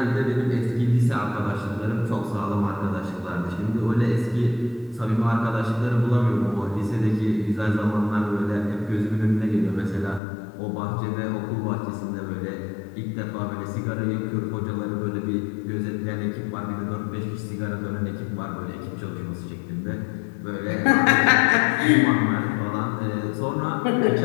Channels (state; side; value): drops out; right; at 10.2 s